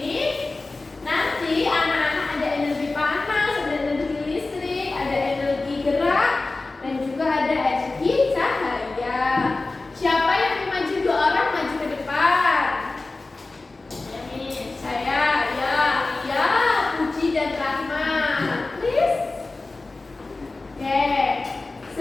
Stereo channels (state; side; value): quieter; right; 3.4 dB